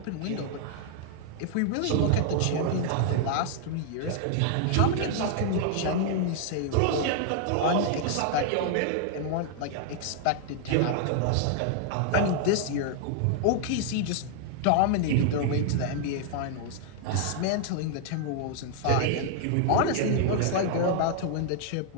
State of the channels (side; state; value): both; different; correlation 0.00